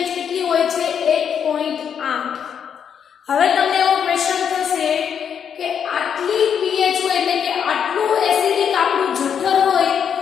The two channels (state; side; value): quieter; right; 7.8 dB